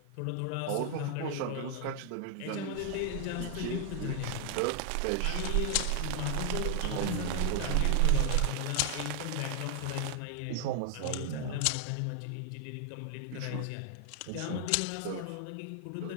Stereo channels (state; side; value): different; both; correlation 0.00